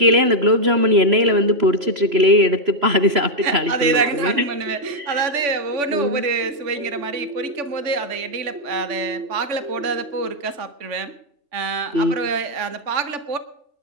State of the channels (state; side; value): late; left; 3.5 ms